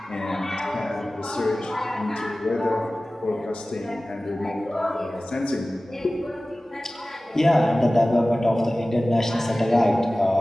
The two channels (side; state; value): both; normal; correlation 0.97